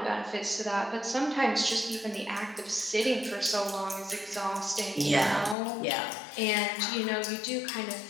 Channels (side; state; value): right; drops out; at 5.6 s